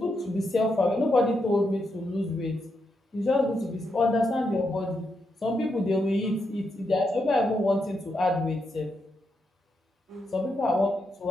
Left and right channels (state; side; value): normal; both; correlation 0.83